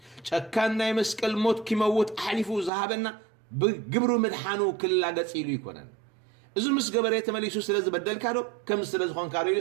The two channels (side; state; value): left; drops out; at 2.7 s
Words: ጨካን ናይ መስቀል ሞት ኪመውት ኣሕሊፉ ዝሃበና ብግብሩ ምድሓኑ ክላገፅ ኢሉ ይኮነን እዚ ምስ ገበረ ተመሊሱ ስለ ዝበደልካ ዶ ከም ስለ ዝኾንካ ዶ